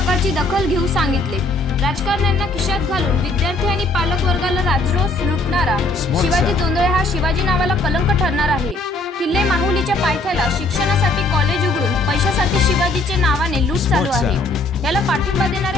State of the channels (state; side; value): quieter; right; 3.0 dB